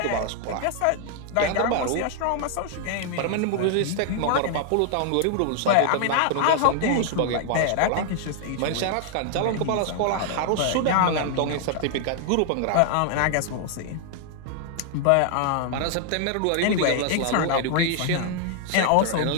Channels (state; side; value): different; both; correlation 0.00